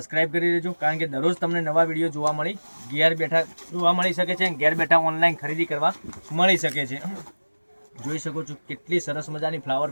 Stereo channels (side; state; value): both; inverted; correlation -1.00